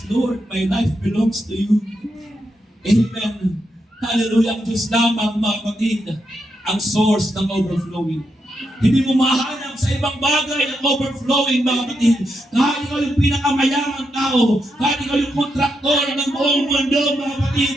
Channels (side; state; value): both; normal; correlation 0.83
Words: Lord, my life belongs to you. Amen. Hallelujah. Ang Diyos lamang, mga kapatid, ang source ng overflowing. Hindi mo mahanap sa ibang bagay ang overflowing, mga kapatid. Kahit ikaw yung pinakamayamang tao, kahit ikaw yung kontraktor ng buong mundo, mga kapatid,